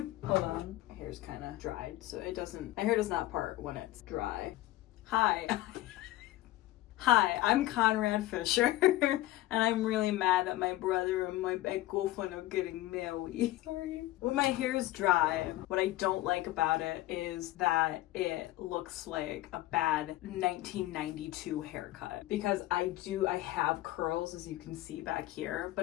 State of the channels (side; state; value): right; quieter; 16.2 dB